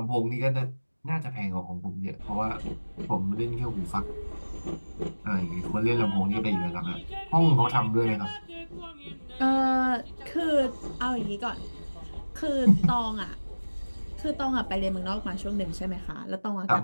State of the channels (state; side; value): inverted; both; correlation -1.00